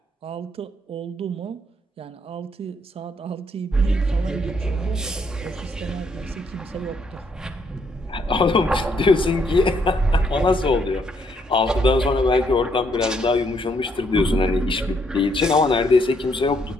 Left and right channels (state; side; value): normal; both; correlation 0.72